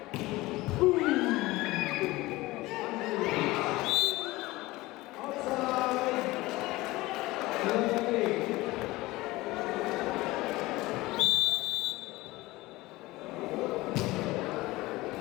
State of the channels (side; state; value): right; quieter; 19.7 dB